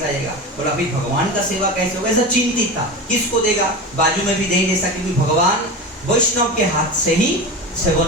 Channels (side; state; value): both; normal; correlation 0.27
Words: आएगा। बोला फिर भगवान का सेवा कैसे होगा, ऐसा चिंतित था, किसको देगा, बाजू में भी नहीं दे सके, क्योंकि भगवान वैष्णव के हाथ से ही